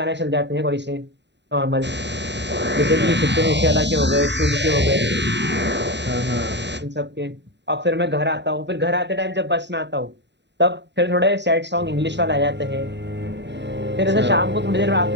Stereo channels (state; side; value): late; left; 0.51 ms